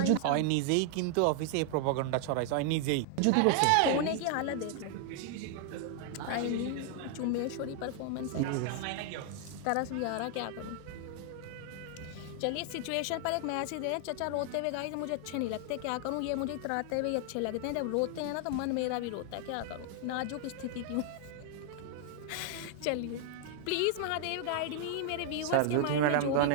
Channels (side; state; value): both; different; correlation 0.00